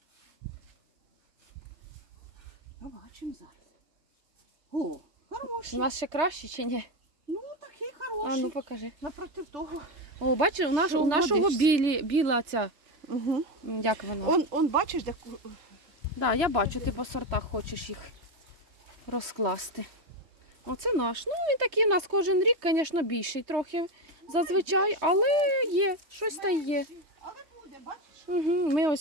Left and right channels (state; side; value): late; left; 3.2 ms